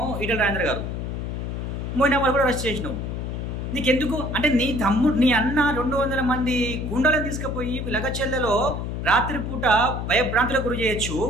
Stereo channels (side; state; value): left; noise; hum, 4 dB below the sound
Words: ఈటెల రాజేందర్ గారు. మొయినాబాద్ కూడా అరెస్ట్ చేసినావు. నీకెందుకు అంటే, నీ అన్న 200 మంది గుండాలను తీసుకుపోయి లగచెల్లలో రాత్రిపూట భయభ్రాంతులకు గురి చేయొచ్చు